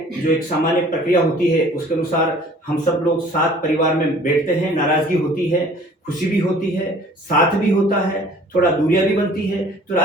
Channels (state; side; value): normal; both; correlation 0.51